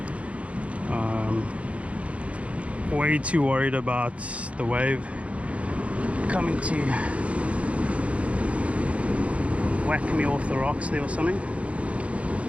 Way too worried about the wave coming to whack me off the rocks there or something.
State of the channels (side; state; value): left; late; 0.063 ms